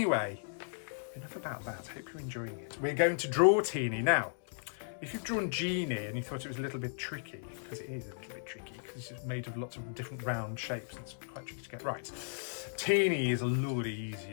enough about that. Hope you're enjoying it. We're going to draw Teeny. Now, if you've drawn Genie and you thought it was a little bit tricky, because it is a little bit tricky, because it's made of lots of different round shapes and it's quite tricky to get right. Teeny is a lot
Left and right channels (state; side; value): silent; right; digital silence